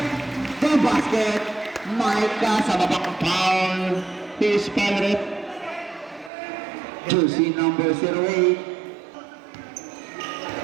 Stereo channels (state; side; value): drops out; left; at 6.3 s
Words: the basket. Micah sa babang foul, his favorite. Jersey number 08.